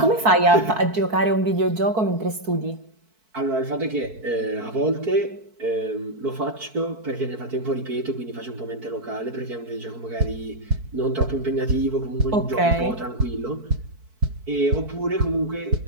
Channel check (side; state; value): left; late; 4.6 ms